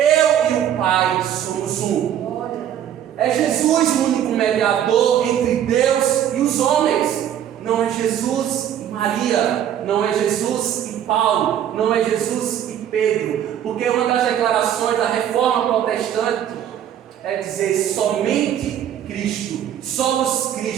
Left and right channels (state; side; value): quieter; left; 10.2 dB